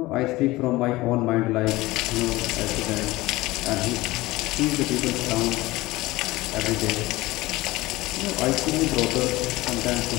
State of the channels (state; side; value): quieter; right; 19.5 dB